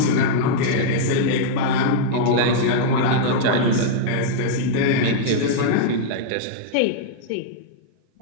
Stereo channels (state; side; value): different; both; correlation -0.02